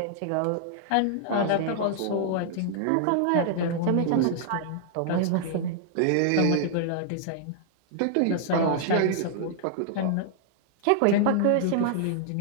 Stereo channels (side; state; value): both; different; correlation -0.01